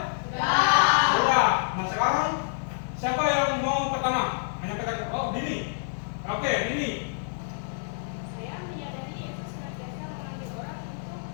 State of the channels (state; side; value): silent; right; digital silence